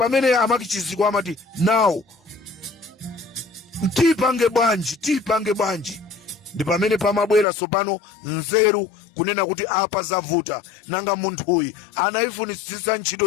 Amaki Chidziko amati now tipange bwanji. Ndi pamene pamabwera sopano nzeru kunena kuti apa zavuta nanga munthuyi anaifunisisa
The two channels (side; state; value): right; drops out; at 7.5 s